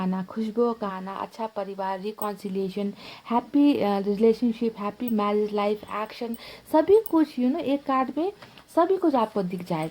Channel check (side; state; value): both; identical; correlation 1.00